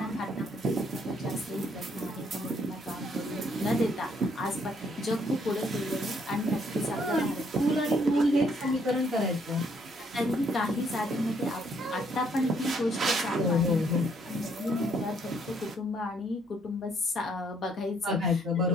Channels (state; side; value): normal; both; correlation 0.68